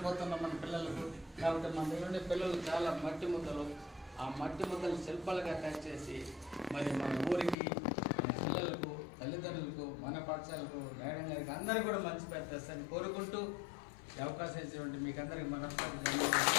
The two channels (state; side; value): drops out; right; at 7.6 s